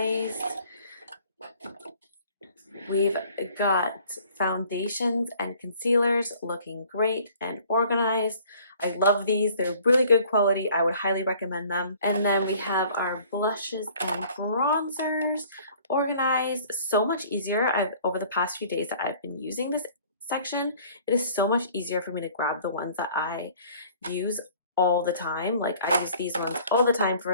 We've got foundations and concealers looking great and organized. I love these. They're really good quality. I would highly recommend them. And then we have our blushes and bronzers organized. So much easier. Over the past few days that I've been using this section, it is so much easier for me to grab the ones that I use all the time. Like I use these ones all the time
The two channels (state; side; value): inverted; both; correlation -0.54